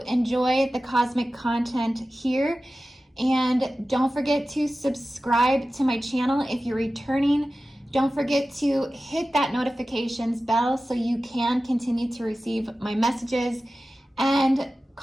enjoy the cosmic content here, and don't forget to subscribe to my channel if you're returning. Don't forget to hit that notifications bell so you can continue to receive my messages, and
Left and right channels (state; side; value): normal; both; correlation 0.95